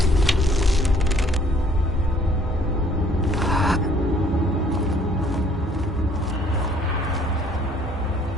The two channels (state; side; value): normal; both; correlation 0.60